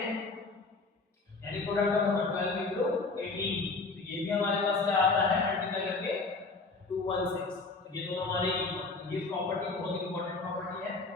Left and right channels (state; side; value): quieter; right; 3.8 dB